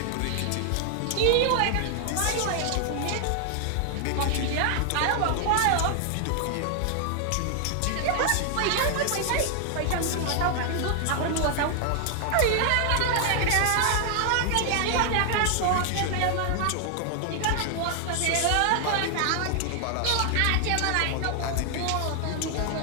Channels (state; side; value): different; both; correlation 0.00